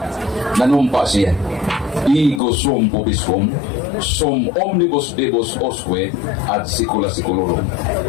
nanumpa siya. Ego sum pubisum, sum omnibus debus osque ad secula seculorum.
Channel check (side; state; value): right; drops out; at 2.4 s